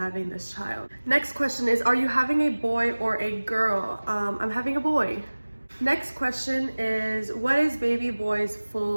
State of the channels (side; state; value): both; inverted; correlation -1.00